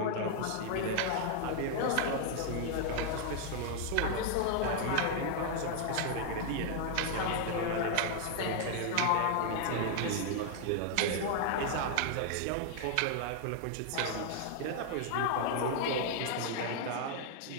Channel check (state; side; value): different; both; correlation 0.00